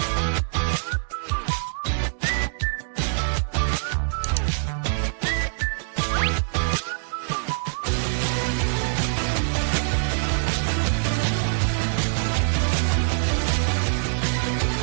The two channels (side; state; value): left; silent; digital silence